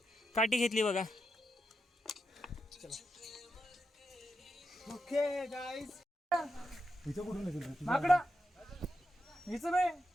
काठी घेतली बघा. ओके गाईज माकडा हिचं बे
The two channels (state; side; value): normal; both; correlation 0.86